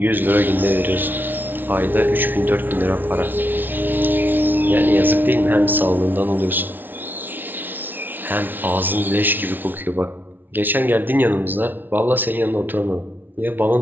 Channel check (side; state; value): left; late; 0.091 ms